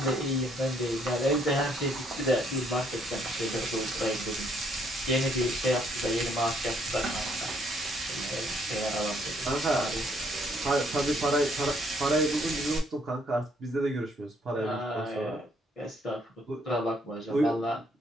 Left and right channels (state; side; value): normal; both; correlation 0.68